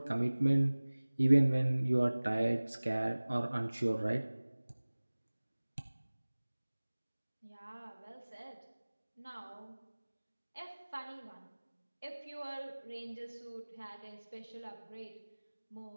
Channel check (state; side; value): inverted; both; correlation -1.00